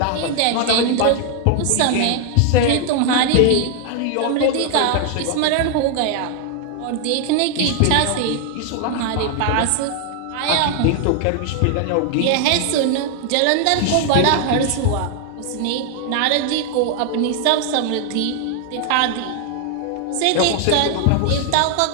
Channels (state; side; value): different; both; correlation 0.00